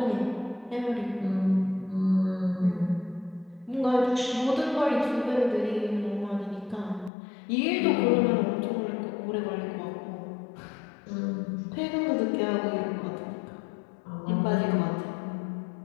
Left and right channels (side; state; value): right; drops out; at 7.1 s